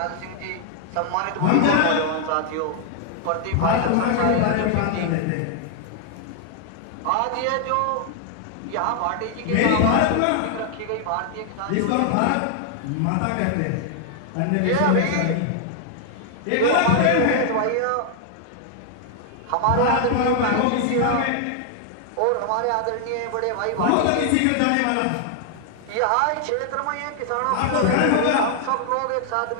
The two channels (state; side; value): different; both; correlation 0.00